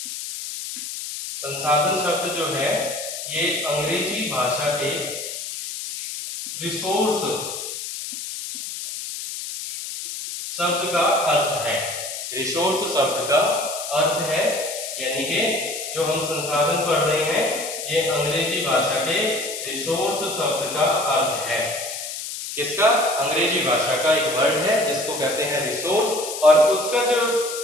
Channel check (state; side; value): noise; left; hiss, 7 dB below the sound